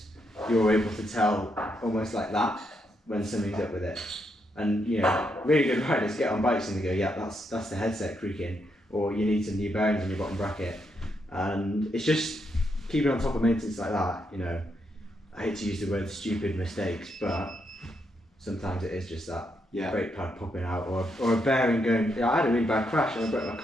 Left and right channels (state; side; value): normal; both; correlation 0.79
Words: you're able to tell almost like that when something's up with it. And really good riders get on bikes and they go, yeah, that's the headset creaking, or you need some new bearings in your bottom bracket. And it's just keeping on top of maintenance like that. I hate to use the word stupid mistakes, but sometimes it is just that. brake pad popping out, or a bearing going. I had a really bad crash and I broke my